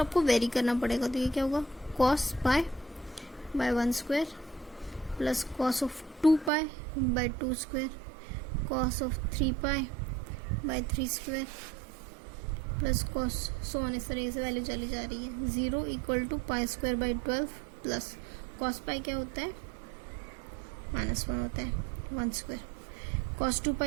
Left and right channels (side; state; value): left; drops out; at 6.5 s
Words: वेरी करना पड़ेगा, तो ये क्या होगा cos pi by 1 square plus cos of 2 pi by 2 square, cos of 3 pi by 3 square plus cos so on, इस तरीके से वैल्यू चली जा रही है। 0 equal to pi square by 12 plus cos pi क्या होता है, -1 होता है 1 स्क्वायर, कॉस 2